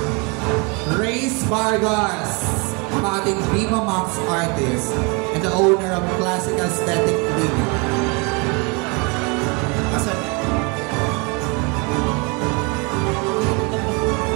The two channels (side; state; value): left; quieter; 30.7 dB